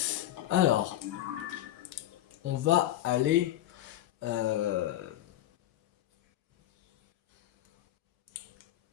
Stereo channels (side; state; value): right; quieter; 13.5 dB